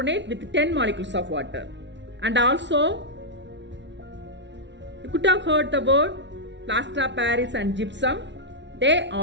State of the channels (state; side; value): late; left; 0.52 ms